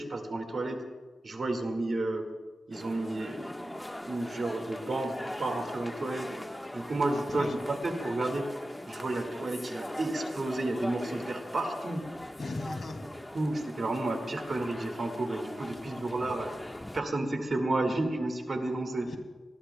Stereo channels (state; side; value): normal; both; correlation 0.93